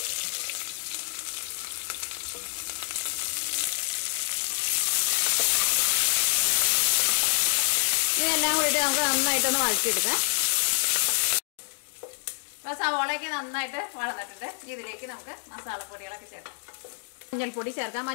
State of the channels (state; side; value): silent; right; digital silence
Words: ഇതെല്ലാം കൂടിയിട്ട് നമുക്ക് നന്നായിട്ടൊന്ന് വഴറ്റിയെടുക്കാം. അപ്പോൾ സവോളയൊക്കെ നന്നായിട്ട് വളർന്നിട്ടുണ്ട്. ഇതിലേക്ക് നമുക്ക് മസാലപ്പൊടികളൊക്കെ ചേർക്കാം. മഞ്ഞൾപ്പൊടി ചേർക്കാം.